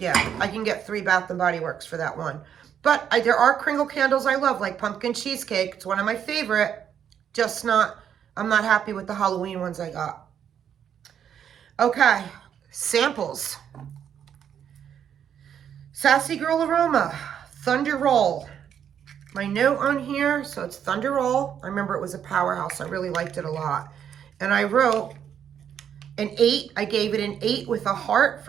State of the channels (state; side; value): quieter; left; 8.8 dB